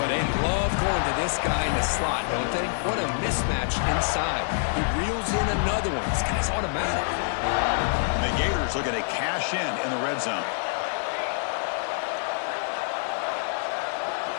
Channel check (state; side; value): silent; right; 57 dB below the other